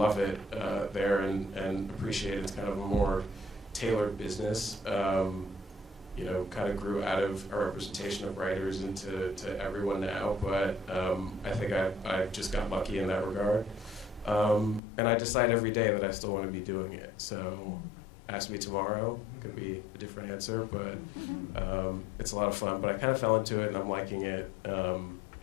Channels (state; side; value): drops out; right; at 14.8 s